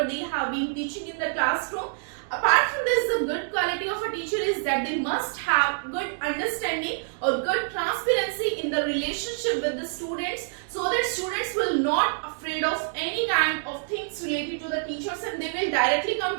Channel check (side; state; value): left; silent; digital silence